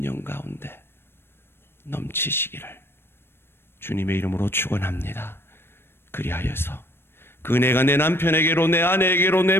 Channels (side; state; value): right; late; 0.11 ms